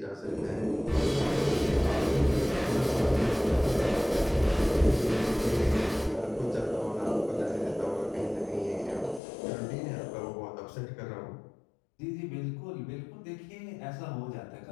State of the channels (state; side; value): drops out; right; at 9.2 s